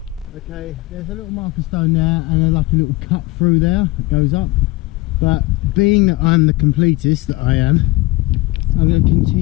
Okay, there's a little marker stone there and like a little cut through there that goes up, but being that I'm the completist that I am, I'm going to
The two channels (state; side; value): quieter; right; 21.0 dB